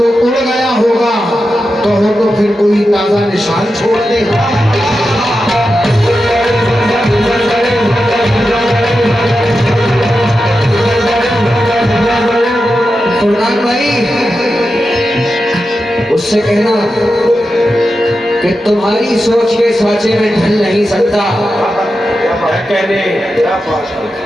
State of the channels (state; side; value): normal; both; correlation 0.90